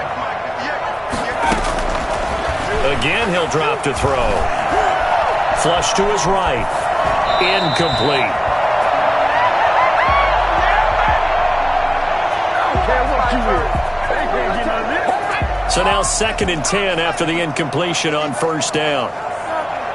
Again, he'll drop to throw. Flush to his right. Incomplete. So now 2nd and 10 after the incompletion on 1st down.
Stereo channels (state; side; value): identical; both; correlation 1.00